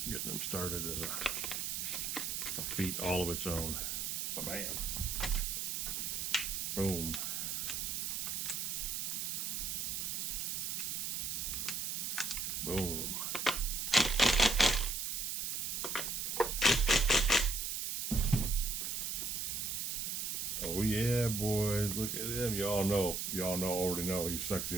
getting them started is a feat all of its own. Bam. Boom. Boom. Oh yeah, boys, look at him. Y'all already know he's sexy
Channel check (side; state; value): right; noise; hiss, 2 dB below the sound